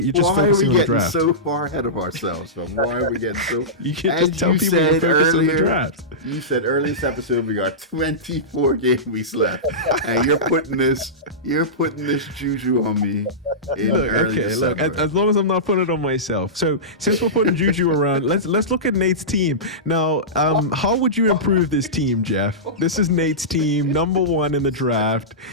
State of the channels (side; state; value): both; normal; correlation -0.17